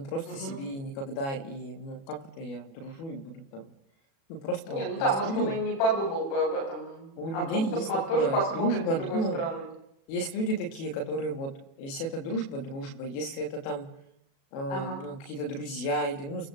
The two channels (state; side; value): late; right; 37 ms